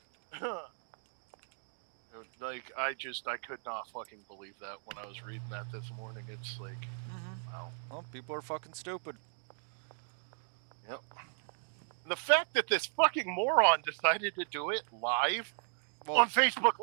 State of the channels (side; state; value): left; silent; digital silence